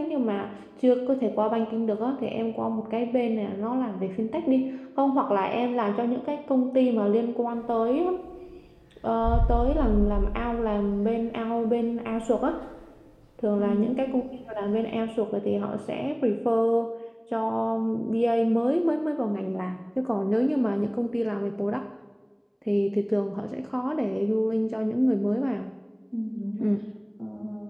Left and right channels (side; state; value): both; identical; correlation 1.00